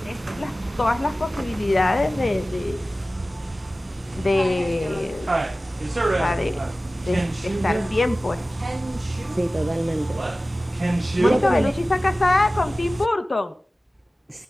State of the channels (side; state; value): both; normal; correlation 0.96